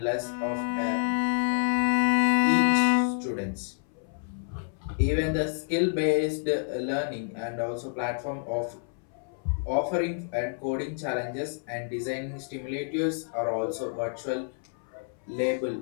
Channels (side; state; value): right; silent; 59 dB below the other